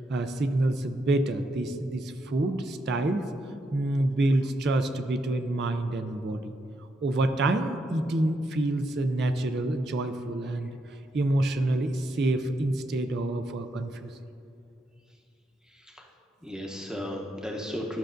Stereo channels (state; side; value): normal; both; correlation 0.80